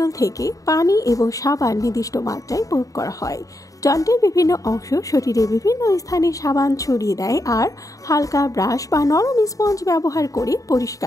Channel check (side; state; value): right; late; 0.16 ms